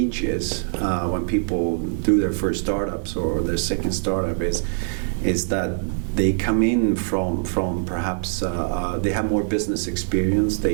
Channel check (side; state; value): left; silent; 62 dB below the other